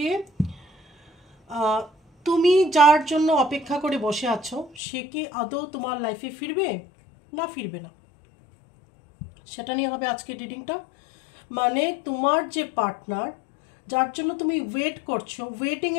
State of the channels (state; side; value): drops out; right; at 4.8 s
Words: তুমি যার জন্য অপেক্ষা করে বসে আছো সে কি আদৌ তোমার লাইফে ফিরবে না ফিরবে না, সেটা নিয়ে হবে আজকের রিডিংটা। মানে তোমার যে পার্টনার যার জন্য তুমি ওয়েট করছো,